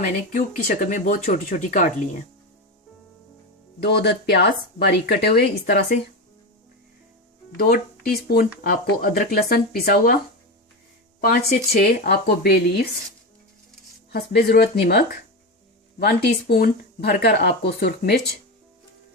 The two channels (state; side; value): normal; both; correlation 0.18